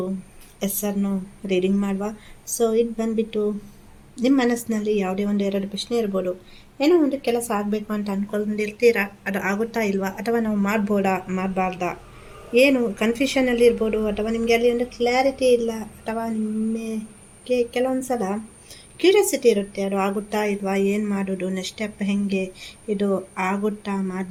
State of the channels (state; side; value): identical; both; correlation 1.00